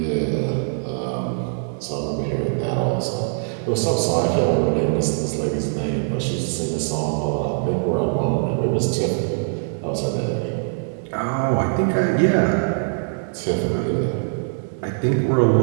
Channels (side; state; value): left; silent; digital silence